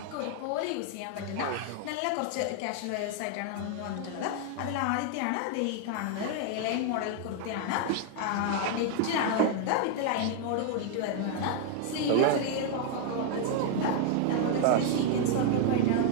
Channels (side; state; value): both; different; correlation 0.00